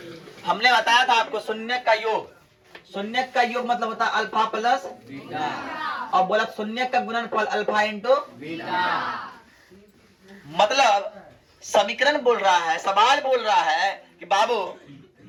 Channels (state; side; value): identical; both; correlation 1.00